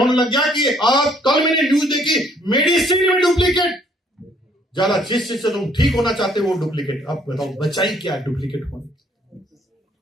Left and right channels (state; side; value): normal; both; correlation 0.63